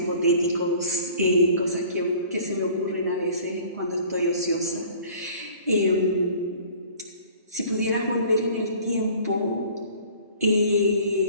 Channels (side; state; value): both; inverted; correlation -0.48